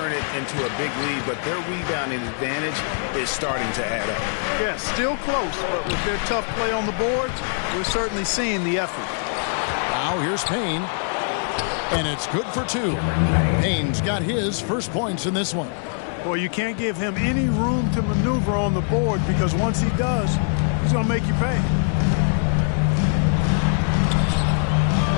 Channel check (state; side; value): silent; right; 63 dB below the other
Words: it into a big lead, but their rebounding advantage is starting to add up. Yes, still close, but with their tough play on the boards, we're certainly seeing the effort. Now here's Payne. And it's good for 2. Payne's got his first points in this one. Boy, you can't give him any room to maneuver on the board, because once he does, he's going to make you pay.